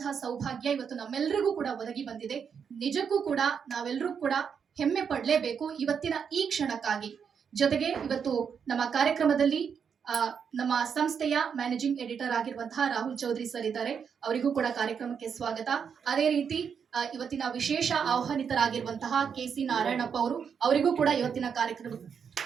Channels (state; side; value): quieter; left; 6.9 dB